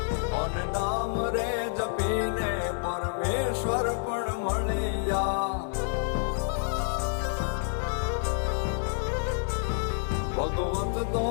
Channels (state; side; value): silent; right; digital silence